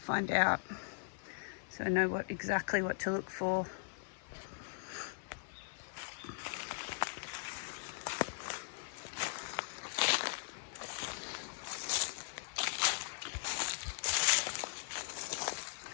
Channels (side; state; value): right; silent; 52 dB below the other